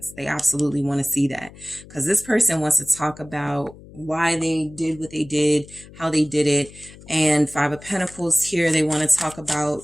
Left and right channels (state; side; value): noise; left; hum, 20 dB below the sound